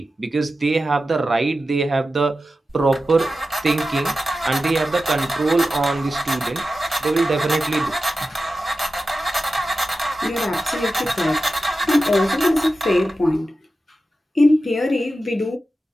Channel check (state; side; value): normal; both; correlation 0.93